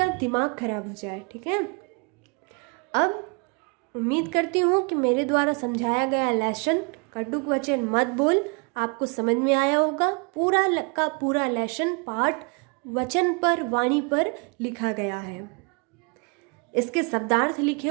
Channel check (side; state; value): left; quieter; 33.7 dB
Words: दिमाग खराब हो जाए। ठीक है, अब उम्मीद करती हूँ कि मेरे द्वारा समझाया गया लेसन कटुक वचन मत बोल आपको समझ में आया होगा। पूरा का पूरा लेसन पाठ वचन पर, वाणी पर लिखा गया है, इसके शब्दार्थ लिखे